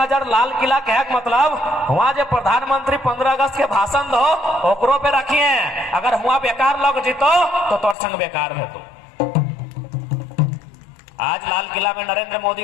लाल किला के मतलब वहां जो प्रधानमंत्री 15 अगस्त के भाषण दो ओकरो पे रखिए। अगर हुआ बेकार लग जीतो तो तोर संग बेकार है। तो आज लाल किला में नरेंद्र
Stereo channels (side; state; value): right; drops out; at 8.0 s